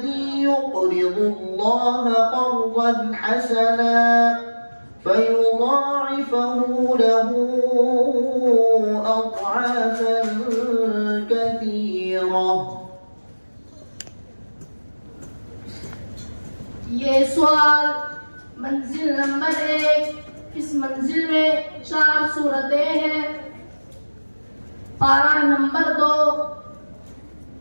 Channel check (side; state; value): both; inverted; correlation -1.00